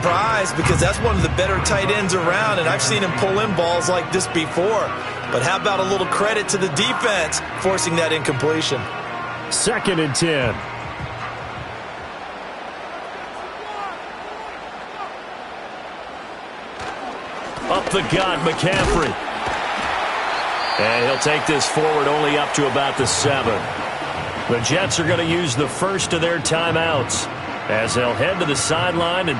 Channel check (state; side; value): identical; both; correlation 1.00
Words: because that's one of the better tight ends around, and I've seen him pull in balls like this before. But how about a little credit to the defense forcing that incompletion? 2nd and 10. Up the gut, McCaffrey. And he'll take this forward only up to about the 7. The Jets are going to use the first of their timeouts as they'll head to the sideline